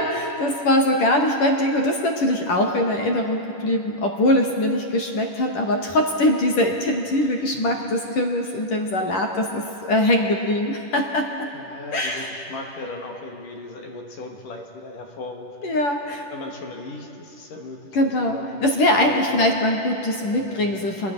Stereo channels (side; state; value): right; late; 10 ms